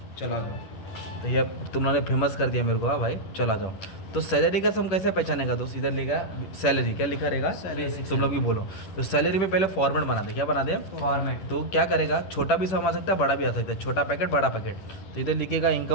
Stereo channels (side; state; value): right; late; 10 ms